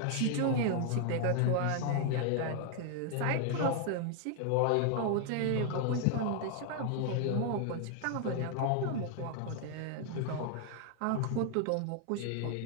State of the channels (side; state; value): both; different; correlation 0.00